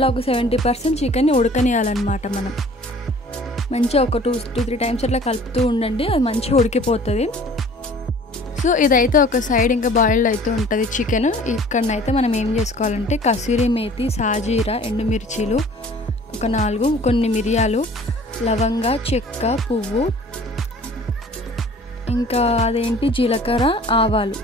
ఒక 70% చికెన్ని ఉడకనియాలన్నమాట. మనం మంచిగా ఒక 2-3 టైమ్స్ అట్లా కలుపుతూ ఉండండి, అది మంచిగా ఉడికిపోతుంది. సో ఇదైతే ఒక సైడ్ ఇంకా బాయిల్డ్ అయితే ఉంటుంది చికెన్. ఇక్కడనైతే మనం ఏం చేసుకోవాలంటే కసూరి మేతి, సాజీరా, ఎండుమిర్చీలు ఒక 4, కొన్ని మిరియాలు, లవంగ, చెక్క, పువ్వు, ఇంకా అదేంటి జీలకర్ర, ఆవాలు,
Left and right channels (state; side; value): normal; both; correlation 0.49